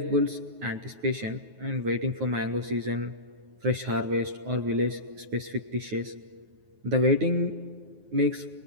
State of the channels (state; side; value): late; left; 9.5 ms